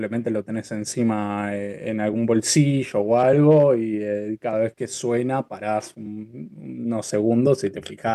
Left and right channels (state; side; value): identical; both; correlation 1.00